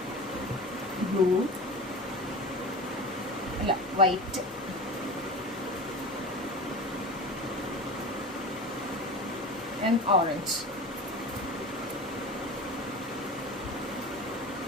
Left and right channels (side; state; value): both; normal; correlation 0.32